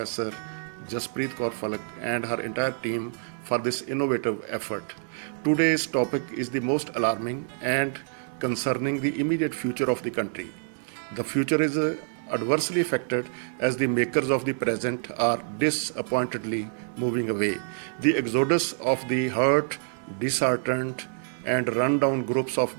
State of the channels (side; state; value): left; silent; digital silence